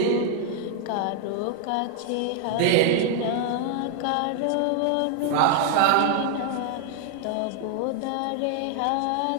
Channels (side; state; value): both; different; correlation 0.00